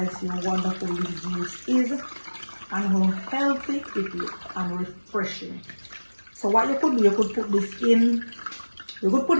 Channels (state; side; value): inverted; both; correlation -1.00